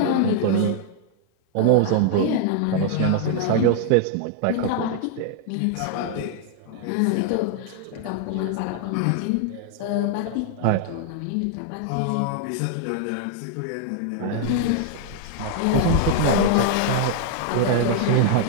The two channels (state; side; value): different; both; correlation 0.00